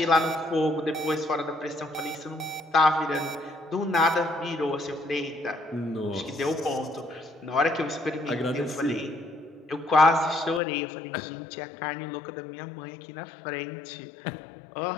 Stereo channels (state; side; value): drops out; right; at 10.6 s